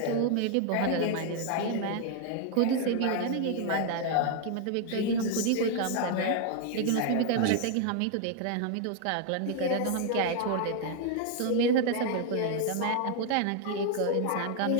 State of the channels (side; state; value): both; different; correlation 0.00